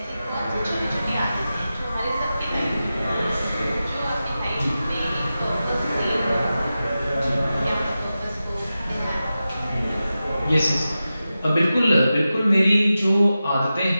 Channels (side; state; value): both; inverted; correlation -0.93